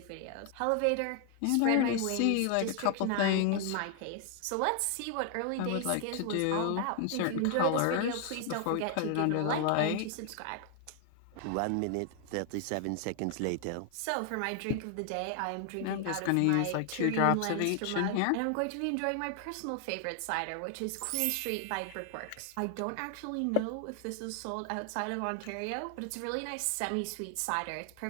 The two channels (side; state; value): both; different; correlation 0.00